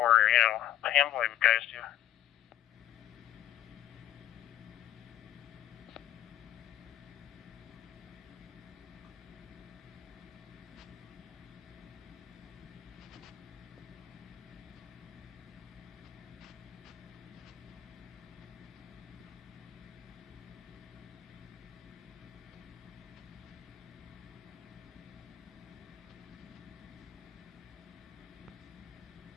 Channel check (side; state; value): right; quieter; 12.6 dB